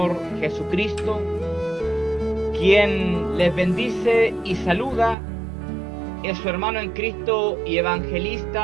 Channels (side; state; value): left; drops out; at 5.2 s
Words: Jesucristo, quien les bendice y saluda es su hermano en Cristo y